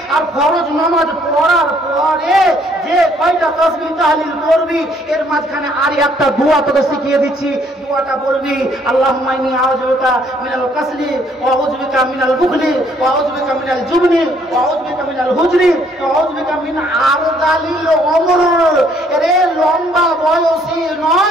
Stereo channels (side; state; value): both; normal; correlation 0.65